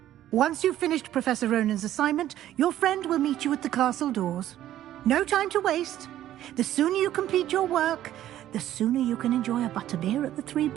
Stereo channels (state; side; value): quieter; left; 12.6 dB